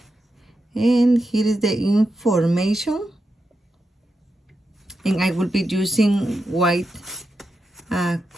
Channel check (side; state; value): both; normal; correlation 0.87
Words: And here is the information. And I will be using white